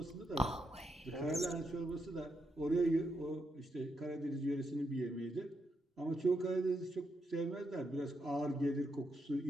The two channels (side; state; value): both; normal; correlation 0.82